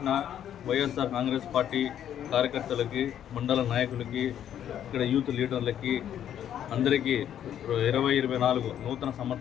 వైఎస్ఆర్ కాంగ్రెస్ పార్టీ కార్యకర్తలకి, మండల నాయకులకి, ఇక్కడ యూత్ లీడర్లకి అందరికీ 2024 నూతన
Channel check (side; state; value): right; quieter; 10.2 dB